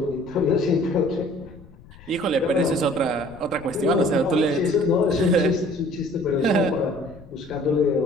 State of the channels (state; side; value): noise; left; rumble, 22 dB below the sound